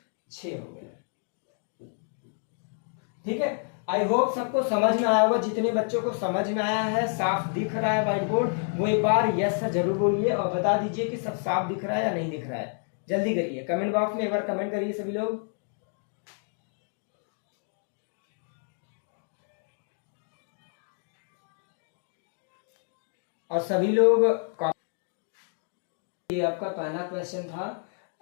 6 हो गया। ठीक है, आई होप सबको समझ में आया होगा। जितने बच्चों को समझ में आया है, साफ दिख रहा है व्हाइट बोर्ड, वो एक बार यस सर जरूर बोलिए और बता दीजिए कि सब साफ दिख रहा है या नहीं दिख रहा है। जल्दी करिए, कमेंट बॉक्स में एक बार कमेंट करिए सभी लोग। और सभी लोग, ये आपका पहला क्वेश्चन था।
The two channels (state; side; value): silent; right; 59 dB below the other